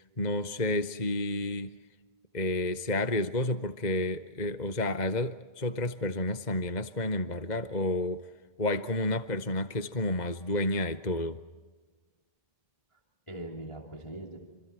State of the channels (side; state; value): right; late; 2.0 ms